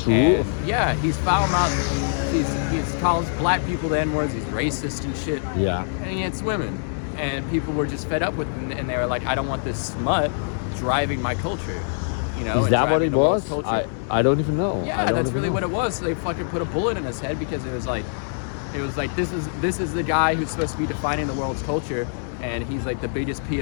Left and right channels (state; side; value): silent; right; digital silence